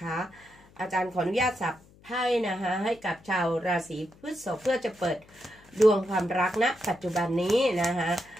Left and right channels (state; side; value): noise; left; hum, 26 dB below the sound